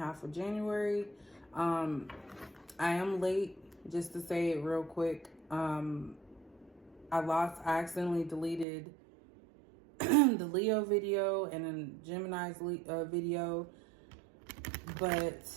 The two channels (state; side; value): drops out; left; at 8.7 s